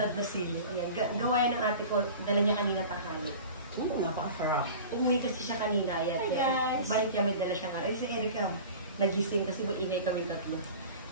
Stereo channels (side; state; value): both; inverted; correlation -0.38